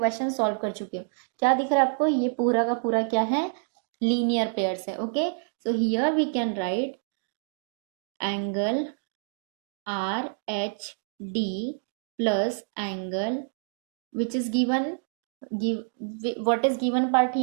solve कर चुके हो. क्या दिख रहा है आपको? ये पूरा का पूरा क्या है? लीनियर पेयर्स है, okay? So here we can write angle RHD plus angle which is given, what is given part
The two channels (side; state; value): left; silent; digital silence